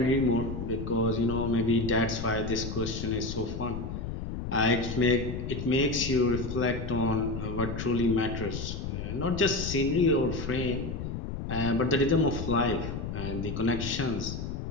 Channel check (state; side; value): noise; left; rumble, 5 dB below the sound